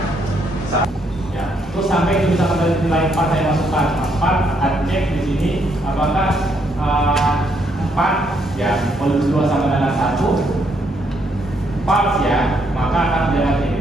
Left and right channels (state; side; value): normal; both; correlation 0.73